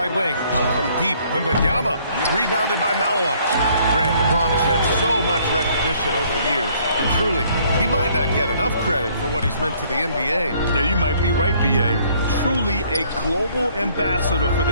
wing. From deep, Wembanyama. Rebounded by Malawach. Grant, LeBron has had so much recognition over the years. Truly, he might not get enough credit for what he's meant to the NBA. Yeah, you might be right, B.A. Truly a global ambassador for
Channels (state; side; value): inverted; both; correlation -0.62